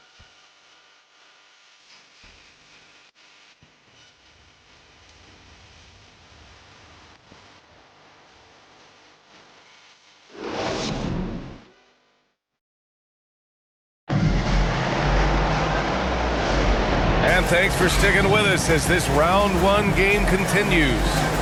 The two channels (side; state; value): both; identical; correlation 1.00